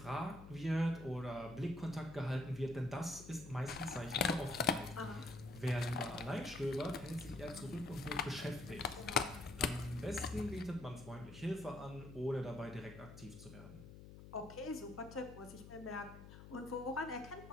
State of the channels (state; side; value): noise; left; hum, 14 dB below the sound